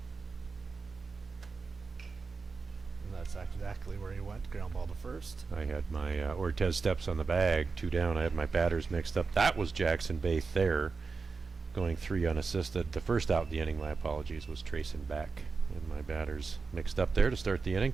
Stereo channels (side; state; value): left; quieter; 4.6 dB